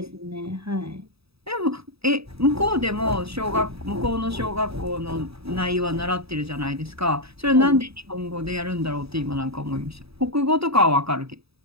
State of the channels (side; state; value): left; late; 0.77 ms